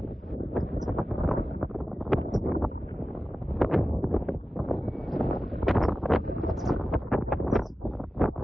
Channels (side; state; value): both; normal; correlation 0.94